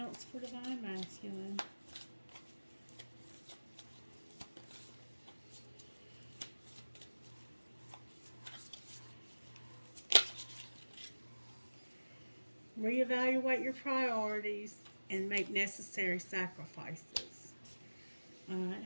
for Divine Masculine? Reevaluate your priorities and make necessary sacrifices. Alright,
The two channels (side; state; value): both; inverted; correlation -1.00